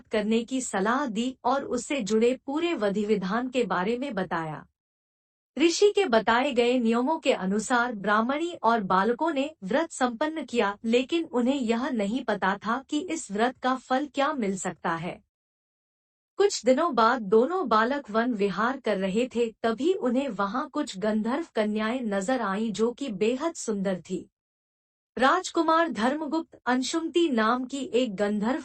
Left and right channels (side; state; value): both; identical; correlation 1.00